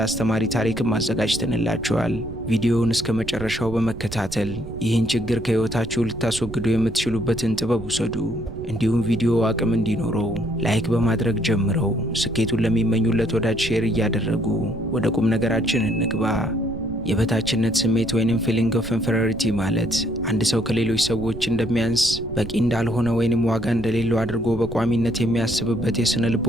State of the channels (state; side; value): noise; right; rumble, 11 dB below the sound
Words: አስተማሪ ታሪክም አዘጋጅተንላችኋል። ቪዲዮውን እስከ መጨረሻው በመከታተል ይህን ችግር ከህይወታችሁ ልታስወግዱ የምትችሉበትን ጥበብ ውሰዱ። እንዲሁም ቪዲዮ አቅም እንዲኖረው ላይክ በማድረግ ጀምረው ስኬቱን ለሚመኙለት ወዳጅ ሼር እያደረጉ ወደ ቁም ነገራችን እንግባ። የበታችነት ስሜት ወይንም ፊሊንግ ኦፍ ኢንፌሪዮሪቲ ማለት አንድ ሰው ከሌሎች ሰዎች እንደሚያንስ፣ በቂ እንዳልሆነ ወይንም ዋጋ እንደሌለው አድርጎ በቋሚነት የሚያስብበት የስነ